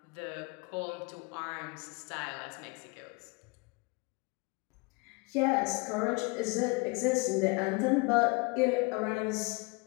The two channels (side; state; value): right; quieter; 28.8 dB